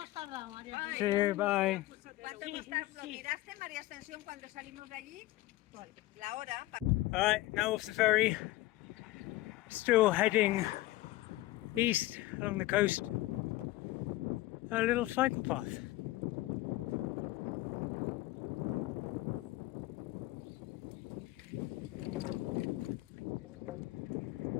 tardado, María. See you, bye. ¿Cuánto hemos tardado? ¿Miraste, María Ascensión, cuando salimos de allí? La hora. Alright, now off the ferry. Still heading east along the coast. A little cycle path.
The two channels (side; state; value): right; quieter; 17.8 dB